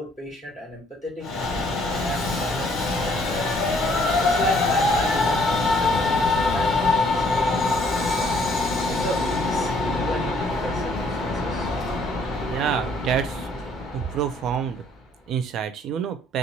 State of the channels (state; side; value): normal; both; correlation 0.63